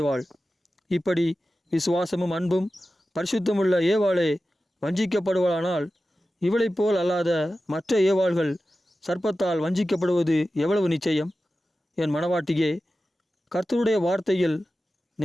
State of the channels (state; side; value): normal; both; correlation 0.94